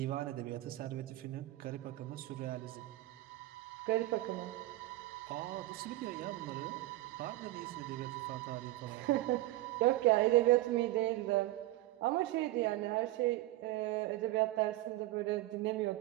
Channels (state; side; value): quieter; left; 17.2 dB